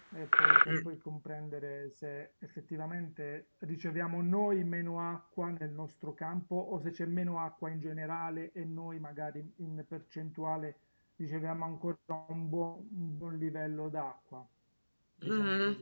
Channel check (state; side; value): inverted; both; correlation -1.00